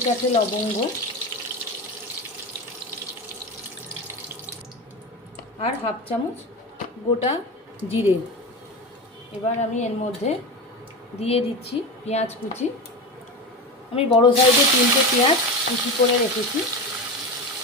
লবঙ্গ, আর হাফ চামচ গোটা জিরে। এবার আমি এর মধ্যে দিয়ে দিচ্ছি পেঁয়াজ কুচি। আমি বড় সাইজে 3টে পেঁয়াজ কুচি করে রেখেছি,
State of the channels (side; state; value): both; normal; correlation 0.23